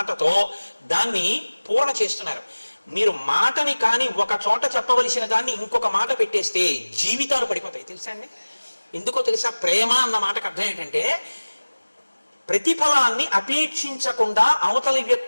దాన్ని పూర్ణ చేస్తున్నారు. మీరు మాటని కానీ ఒక చోట చెప్పవలసిన దాన్ని ఇంకొక మాట పెట్టేస్తే జీవితాలు పడిపోతాయి. తెలుసా అండి? ఎందుకో తెలుసా? ప్రేమ అన్న మాటకు అర్థం ఏంటంటే, ప్రతిఫలాన్ని అపేక్షించకుండా అవతలి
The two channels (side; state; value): both; inverted; correlation -1.00